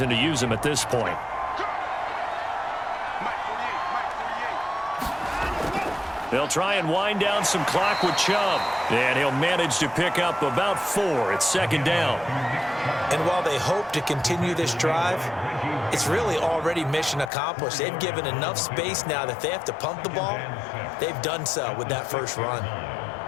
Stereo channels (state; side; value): drops out; right; at 17.3 s